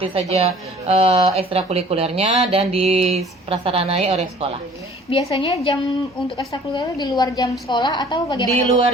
saja ekstrakurikulernya dan diprasaranai oleh sekolah. Biasanya jam untuk ekstrakurikuler di luar jam sekolah atau bagaimana? Di luar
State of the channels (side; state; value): both; normal; correlation 0.51